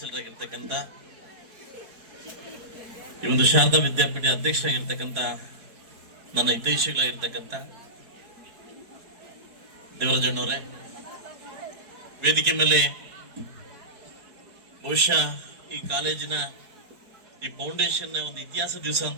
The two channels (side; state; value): left; late; 4.6 ms